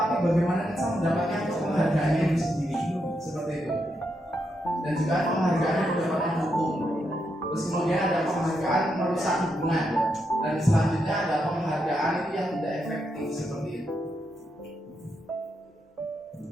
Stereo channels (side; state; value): both; normal; correlation 0.82